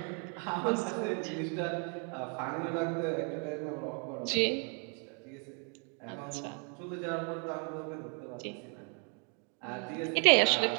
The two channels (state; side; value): quieter; left; 38.3 dB